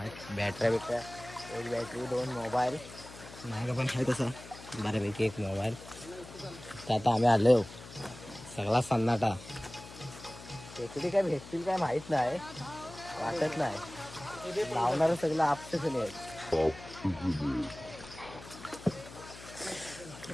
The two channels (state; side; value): noise; left; hum, 16 dB below the sound